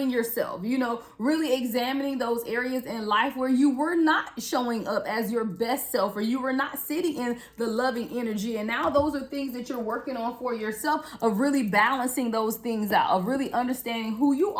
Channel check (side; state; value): both; identical; correlation 1.00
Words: yourself, you know, really examining those areas in life where you were not showing up as your best self, or you were not sitting in the loving energy. And now those are things that you're working on for yourself, of really balancing those things out, of really understanding who you